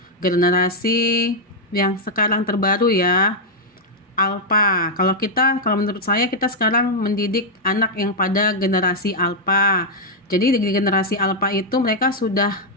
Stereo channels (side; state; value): both; normal; correlation -0.02